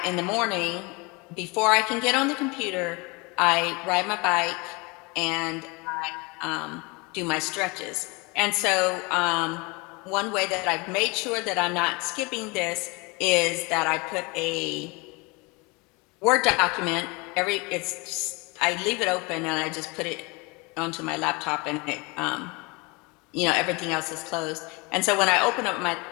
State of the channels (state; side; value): quieter; right; 27.4 dB